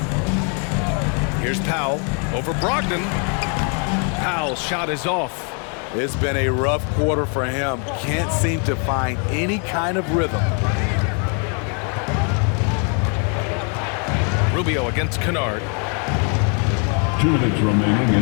Here's Powell over Brogdon. Powell's shot is off. It's been a rough quarter for him. Can't seem to find any kind of rhythm. Rubio against Kennard. 2 minutes remaining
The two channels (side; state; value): right; quieter; 38.9 dB